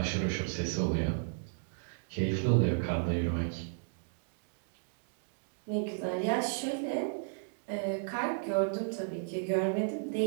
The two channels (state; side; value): silent; left; digital silence